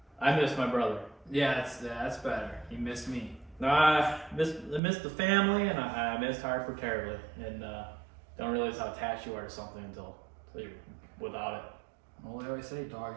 I missed my brother. Yeah, that's better. You missed me. I missed the family, and I missed Harper terribly, and don't realize how attached you are to something until you're without it. Well, they always say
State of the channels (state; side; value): drops out; left; at 4.8 s